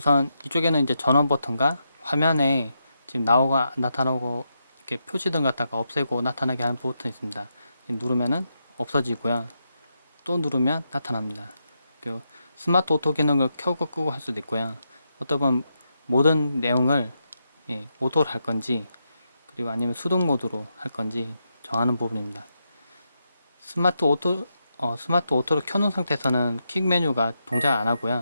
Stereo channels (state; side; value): inverted; both; correlation -0.84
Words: 이쪽에는 이제 전원 버튼과 화면에 지금 나타나고 이렇게 표시등 갖다가 없애고 나타나게 하는 버튼이 있습니다. 누르면은 없어지고요. 또 누르면 나타납니다. 그 스마트 오토 기능을 켜고 끄고 할 수도 있고요. 어떤 분 모든 내용을 오토로 할 건지 그리고 아니면 수동 모드로 할 건지 정하는 부분입니다. 스마트 오토를 켜놓은 상태에서는 킥 메뉴가 동작 안